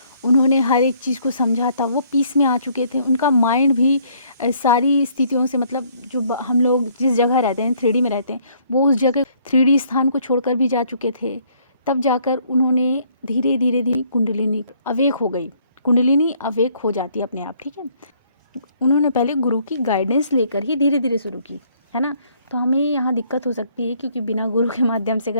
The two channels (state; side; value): inverted; both; correlation -0.64